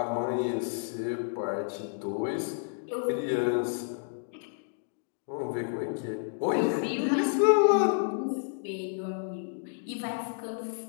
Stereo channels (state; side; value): silent; right; digital silence